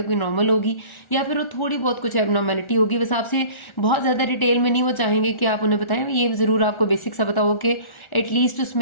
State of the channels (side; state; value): right; late; 1.4 ms